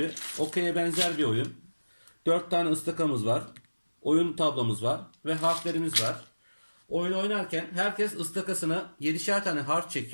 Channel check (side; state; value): both; inverted; correlation -1.00